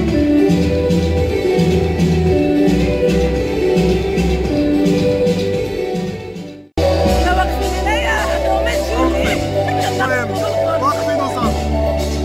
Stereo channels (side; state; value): both; identical; correlation 1.00